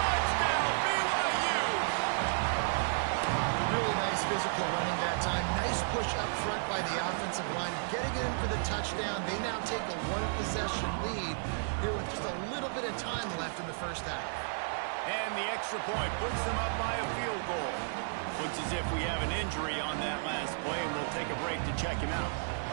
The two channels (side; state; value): left; silent; digital silence